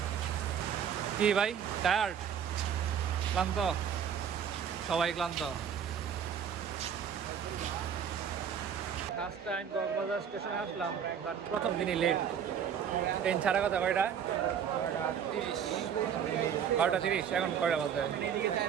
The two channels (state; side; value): quieter; left; 8.1 dB